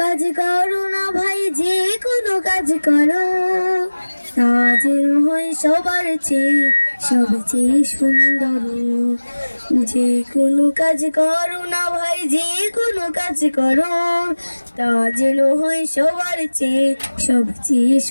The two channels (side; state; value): both; inverted; correlation -1.00